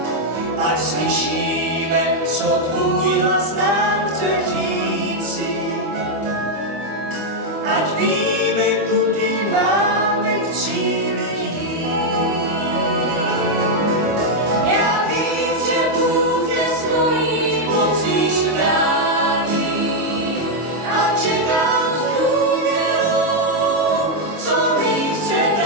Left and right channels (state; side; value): late; left; 25 ms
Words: ať slyšíme, co tvůj hlas nám chce říct.